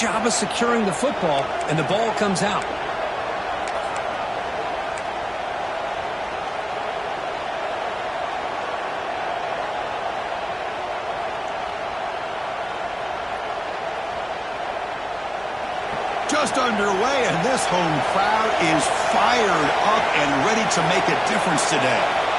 of securing the football, and the ball comes out. Just underway, and this home crowd is fired up and ready to make a difference today.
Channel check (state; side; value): identical; both; correlation 1.00